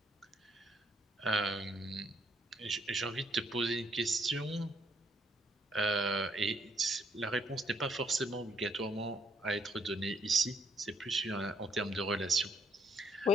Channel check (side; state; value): both; normal; correlation 0.70